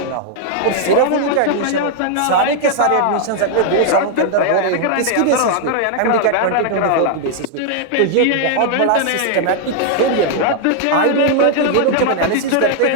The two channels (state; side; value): different; both; correlation 0.00